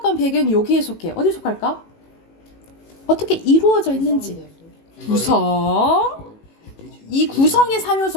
배경이 여기에 속해요. 어디에 속할까? 어떻게 이루어져 있는지. 구성. 이 구성의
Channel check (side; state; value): right; late; 18 ms